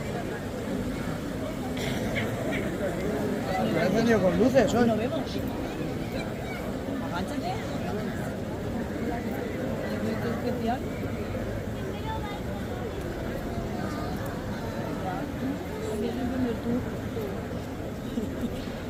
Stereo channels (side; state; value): both; identical; correlation 1.00